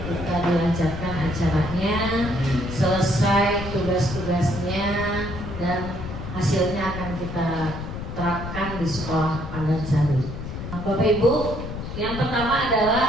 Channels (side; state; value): left; noise; rumble, 7 dB below the sound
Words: kita dilancarkan acaranya, selesai tugas-tugasnya, dan hasilnya akan kita terapkan di sekolah Pandansari. Bapak Ibu, yang pertama